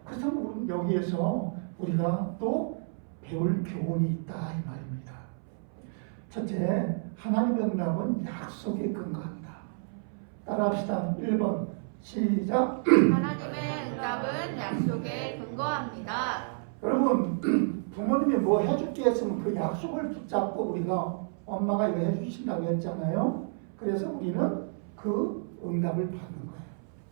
그렇다면 여기에서 우리가 또 배울 교훈이 있다 이 말입니다. 첫째, 하나님의 응답은 약속에 근거한다. 따라합시다. 1번 시작. 하나님의 응답은 약속에 근거합니다. 여러분, 부모님이 뭐 해줄게 했으면 그 약속을 붙잡고 우리가 엄마가 이거 해주신다고 했잖아요. 그래서 우리는 그 응답을 받는 거예요.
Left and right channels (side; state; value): left; silent; 58 dB below the other